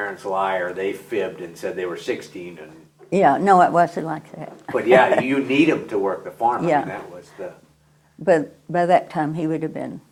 lie, or they fibbed and said they were 16. Yeah, no, it wasn't like that. But yeah, you need them to work the farm. Yeah. I mean, that was the... But by that time, he would have been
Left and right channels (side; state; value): both; identical; correlation 1.00